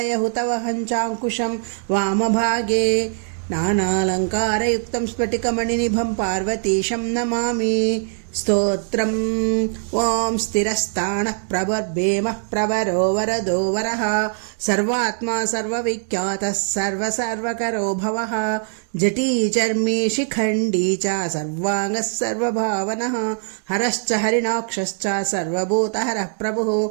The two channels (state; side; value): silent; left; 65 dB below the other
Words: चाङ्कुशं वामभागे नानालङ्कारयुक्तं स्फटिकमणिनिभं पार्वतीशं नमामि। स्तोत्रम् ॐ स्थिरस्थाणः प्रवर्भेमः प्रवरो वरदो वरः सर्वात्मा सर्वविख्यातः सर्वकरो भवः जटी चर्मी शिखण्डी च सर्वाङ्गः सर्वभावनः हरश्च हरिणाक्षश्च सर्वभूतहरः प्रभुः